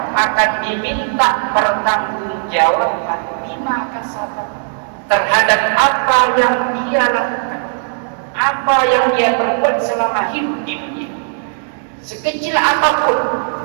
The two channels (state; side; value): silent; left; digital silence